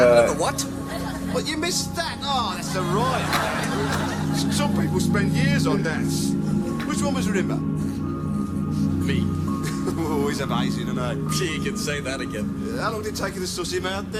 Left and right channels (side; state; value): both; identical; correlation 1.00